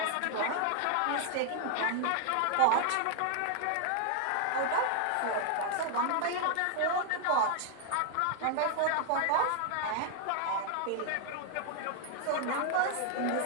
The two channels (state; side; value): different; both; correlation 0.00